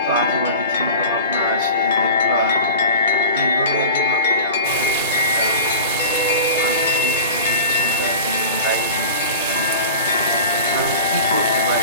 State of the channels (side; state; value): both; inverted; correlation -0.35